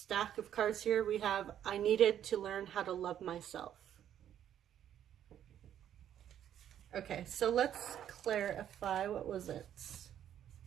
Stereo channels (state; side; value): quieter; left; 10.4 dB